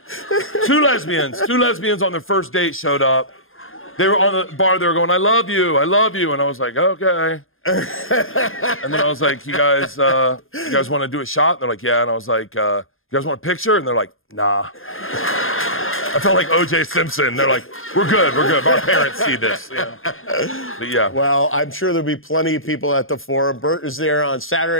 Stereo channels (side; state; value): right; late; 0.60 ms